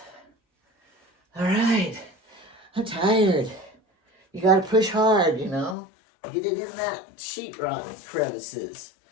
All right. I'm tired. You got to push hard, you know. Get it in that sheetrock crevices.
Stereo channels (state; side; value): drops out; right; at 5.8 s